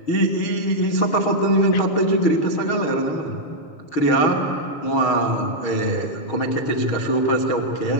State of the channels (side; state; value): right; late; 6.4 ms